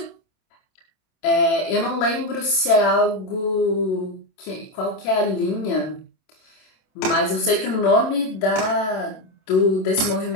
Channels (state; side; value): late; right; 27 ms